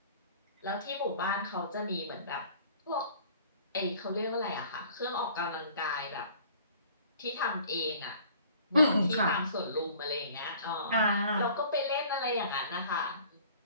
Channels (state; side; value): inverted; both; correlation -0.51